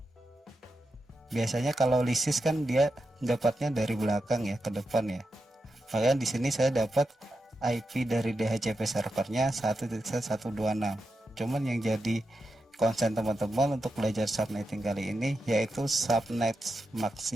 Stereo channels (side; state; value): both; normal; correlation 0.88